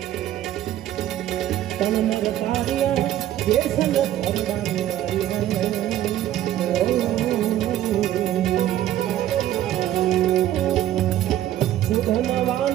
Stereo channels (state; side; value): quieter; left; 12.7 dB